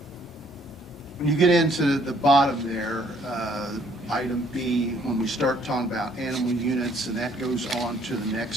When you get into the bottom there, item B, when we start talking about animal units, and that goes on to the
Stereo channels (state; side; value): normal; both; correlation 0.64